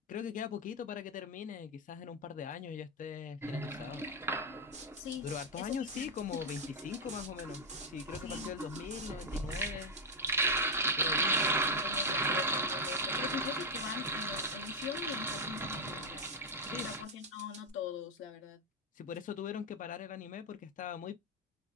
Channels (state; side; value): normal; both; correlation 0.01